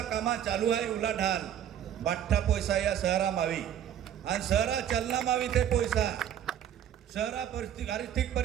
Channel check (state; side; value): quieter; left; 10.1 dB